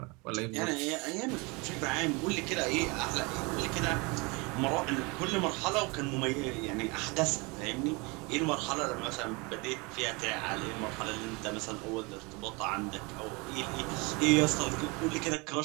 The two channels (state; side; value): quieter; left; 27.8 dB